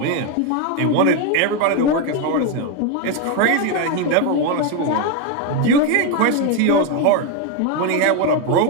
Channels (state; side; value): different; both; correlation 0.02